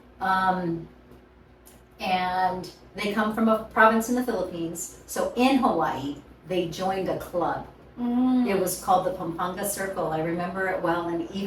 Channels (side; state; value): both; identical; correlation 1.00